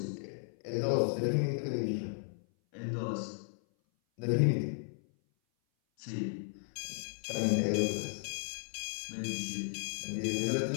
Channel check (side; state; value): right; silent; 55 dB below the other